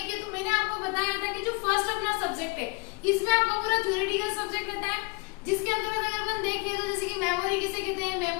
तो मैंने आपको बताया था कि जो फर्स्ट अपना सब्जेक्ट है इसमें आपका पूरा थ्योरेटिकल सब्जेक्ट रहता है, जिसके अंतर्गत अगर अपन देखें तो जैसे कि मेमोरी किसे कहते हैं,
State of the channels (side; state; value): right; quieter; 28.8 dB